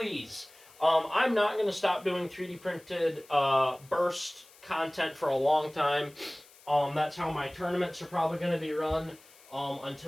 I'm not going to stop doing 3D printed burst content for a long time. That's how my tournaments are probably going to be run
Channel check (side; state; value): left; noise; hiss, 25 dB below the sound